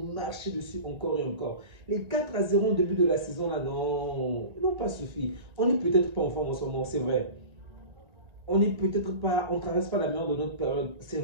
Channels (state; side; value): late; left; 1.9 ms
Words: marcher dessus encore et encore. Les 4-0 au début de la saison, là, non, n'ont pas suffi. On n'est peut-être pas en forme en ce moment, c'est vrai. On n'est peut-être pas, on ne traverse pas la meilleure de notre période, c'est